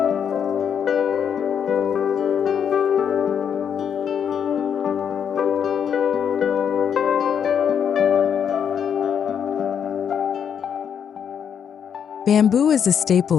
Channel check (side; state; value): right; quieter; 7.9 dB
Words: Bamboo is a